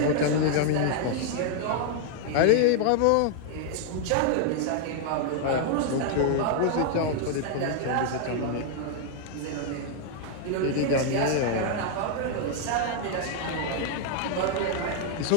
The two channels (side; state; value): both; different; correlation 0.00